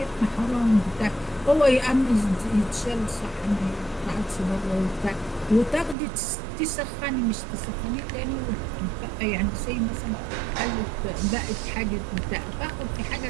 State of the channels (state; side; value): drops out; left; at 6.0 s